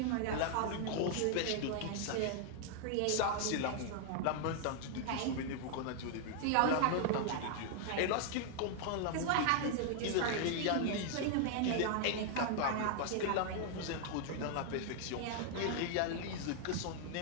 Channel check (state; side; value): different; both; correlation 0.00